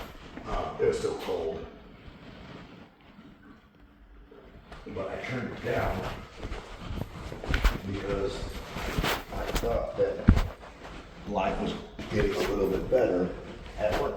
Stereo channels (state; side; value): identical; both; correlation 1.00